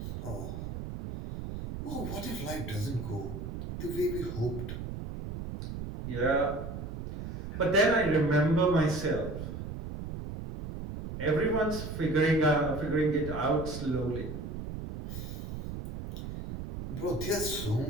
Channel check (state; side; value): noise; right; rumble, 7 dB below the sound